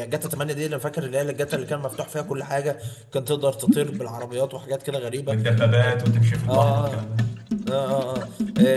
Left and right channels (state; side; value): identical; both; correlation 1.00